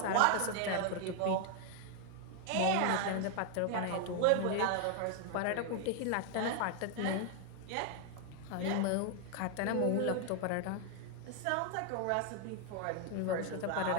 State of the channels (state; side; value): different; both; correlation 0.00